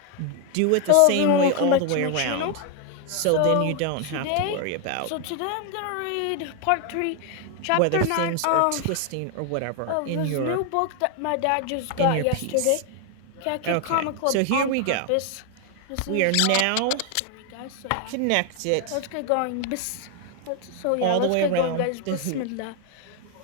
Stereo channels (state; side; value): different; both; correlation 0.01